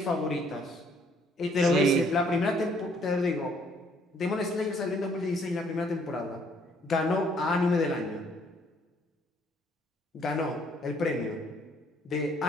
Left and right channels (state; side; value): normal; both; correlation 0.64